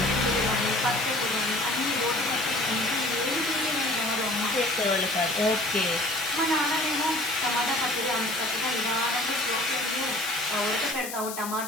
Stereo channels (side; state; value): left; noise; hiss, 8 dB below the sound